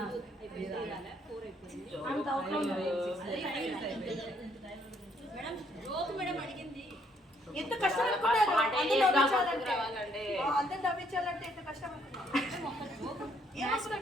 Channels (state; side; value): normal; both; correlation 0.69